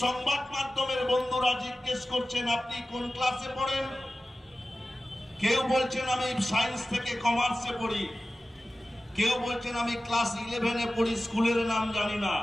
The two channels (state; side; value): normal; both; correlation 0.95